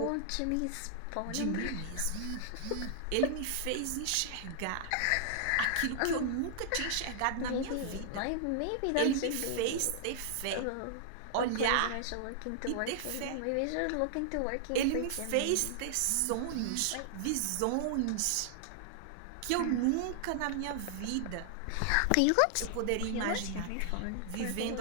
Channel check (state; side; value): different; both; correlation -0.01